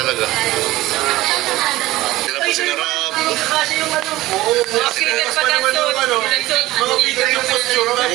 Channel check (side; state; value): left; quieter; 17.3 dB